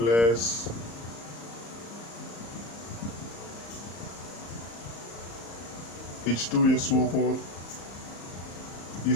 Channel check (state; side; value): late; right; 34 ms